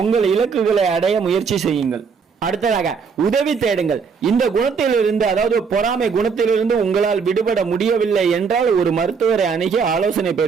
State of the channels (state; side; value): quieter; left; 5.7 dB